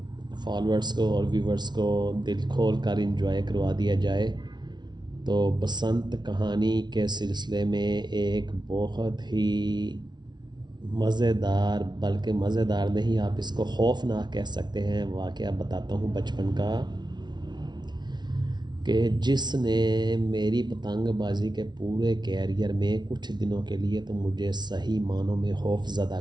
फॉलोअर्स को और व्यूवर्स को दिल खोल कर इंजॉय करवा दिया जाए। तो बसंत कहानी के सिलसिले में एक बहुत ही मज़ेदार, बल्कि मज़ेदार नहीं, आप इसको खौफनाक कह सकते हैं, वाक़या बताता हूँ बचपन का, कि जिसने मेरी पतंगबाज़ी के पूरे कैरियर में कुछ दिनों के लिए तो मुझे सही मानों में खौफज़दा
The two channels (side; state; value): left; late; 0.20 ms